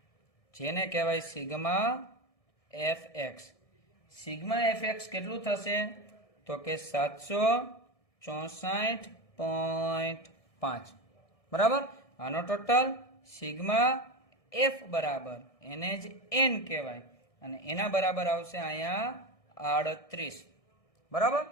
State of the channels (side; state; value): right; late; 1.6 ms